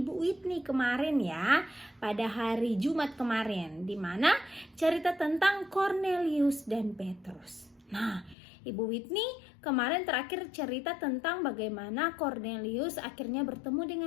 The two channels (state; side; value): drops out; right; at 8.3 s